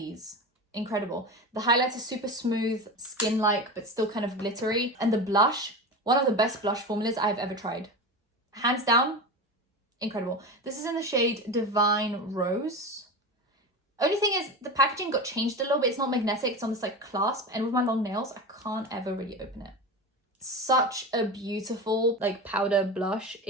Incredible. The highlights are super smooth, skin-like, but still kind of glittery. And the blush, one of the best blush formulas I've ever tried. Hands down, incredible. This is in the shade Divine Rose. Only thing is the packaging got changed a little bit. It's not magnetic, it's on this like clasp. And with my long nails, I can't ever really open it. Such a beautiful like powder blush.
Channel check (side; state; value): both; normal; correlation 0.26